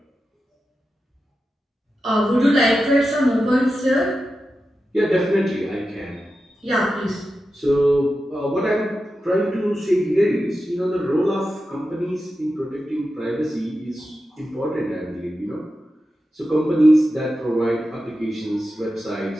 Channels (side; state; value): both; normal; correlation 0.91